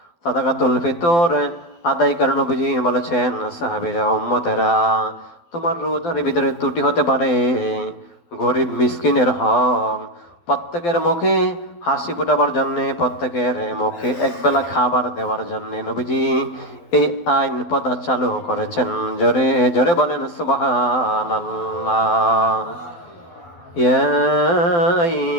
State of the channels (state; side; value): late; right; 12 ms